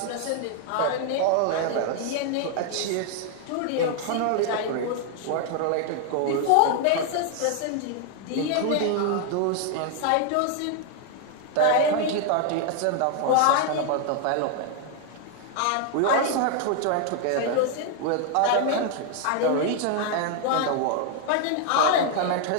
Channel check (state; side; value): different; both; correlation 0.00